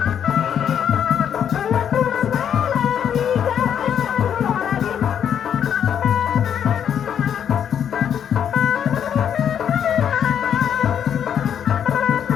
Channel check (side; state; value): right; quieter; 8.7 dB